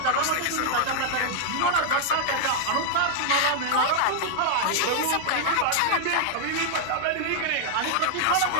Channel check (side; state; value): both; different; correlation -0.01